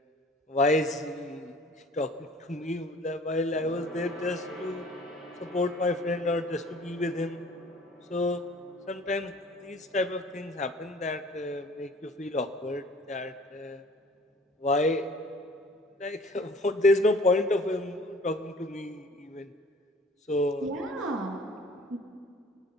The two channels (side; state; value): both; normal; correlation 0.50